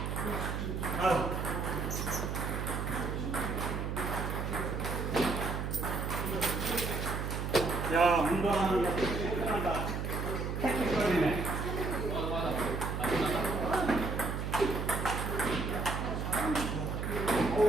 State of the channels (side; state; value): right; noise; hum, 2 dB below the sound